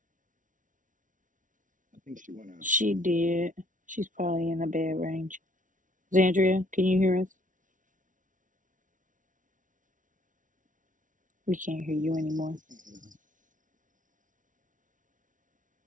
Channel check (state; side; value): late; left; 0.38 ms